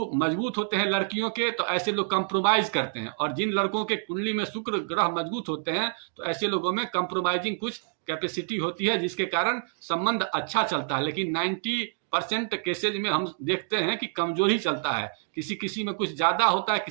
मजबूत होते हैं लड़कियों के, तो ऐसे लोग कंप्रोमाइज करते हैं। और जिन लड़कों के कुंडली में शुक्र ग्रह मजबूत होते हैं तो ऐसे लोगों में कंप्रोमाइजिंग कुछ कैपेसिटी होती है, जिसके कारण संबंध अच्छा चलता है। लेकिन 90% केसेज में हम देखते हैं कि कमजोर ही चलता है। किसी किसी में कुछ ज्यादा होता है,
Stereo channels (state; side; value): silent; left; digital silence